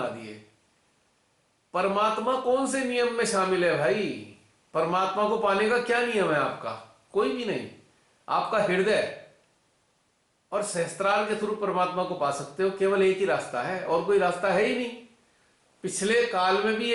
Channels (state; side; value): identical; both; correlation 1.00